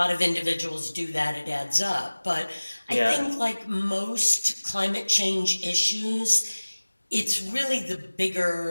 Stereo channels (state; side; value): inverted; both; correlation -1.00